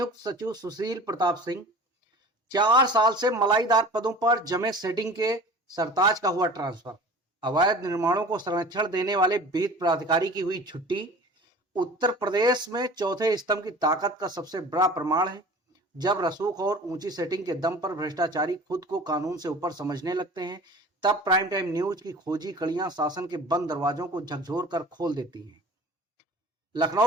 सचिव सुशील प्रताप सिंह। 4 साल से मलाईदार पदों पर जमे सेटिंग के सरताज का हुआ ट्रांसफर। अवैध निर्माणों को संरक्षण देने वाले विहित प्राधिकारी की हुई छुट्टी। उत्तर प्रदेश में चौथे स्तंभ की ताकत का सबसे बड़ा प्रमाण है। जब रसूख और ऊंची सेटिंग के दम पर भ्रष्टाचारी खुद को कानून से ऊपर समझने लगते हैं, तब प्राइम टाइम न्यूज की खोजी कड़ियां शासन के बंद दरवाजों को झकझोर कर खोल देती हैं।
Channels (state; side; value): normal; both; correlation 0.42